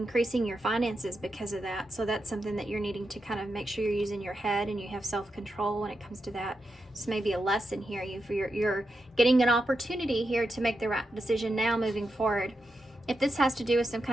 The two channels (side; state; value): both; normal; correlation 0.87